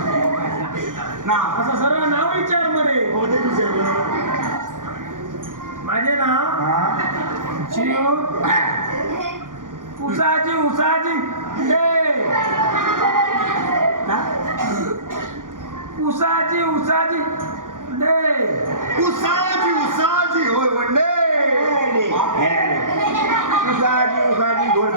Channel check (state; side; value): late; left; 0.88 ms